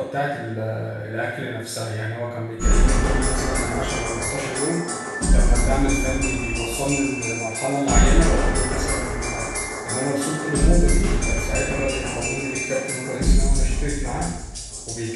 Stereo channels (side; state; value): both; identical; correlation 1.00